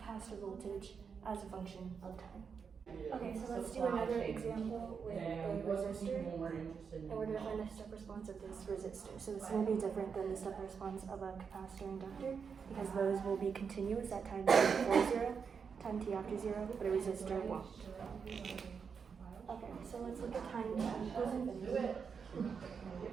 voltage as a function of time. Okay, so let's do another example with a resistor, and we're going to find the step response of this resistor. So it's going to be different than the step response of a capacitor inductor, because those will be continuous at time t before 0, time t after 0, but a resistor won't. Okay, so let's look at time t equals infinity.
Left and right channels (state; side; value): quieter; left; 6.1 dB